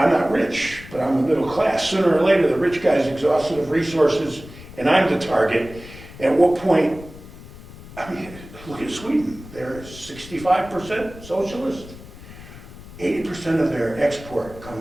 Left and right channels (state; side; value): noise; left; rumble, 17 dB below the sound